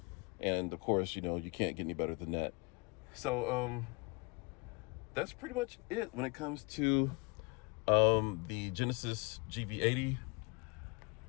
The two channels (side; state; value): right; quieter; 29.1 dB